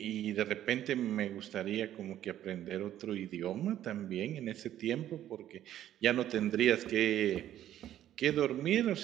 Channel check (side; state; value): left; quieter; 11.9 dB